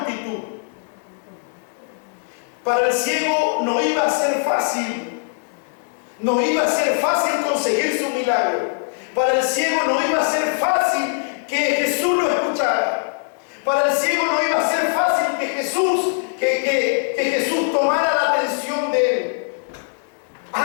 Para el ciego no iba a ser fácil. No iba a ser fácil conseguir su milagro. Para el ciego no iba a ser fácil que Jesús lo escuchara. Para el ciego no iba a ser fácil que Jesús tomara la atención de él.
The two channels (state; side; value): silent; right; digital silence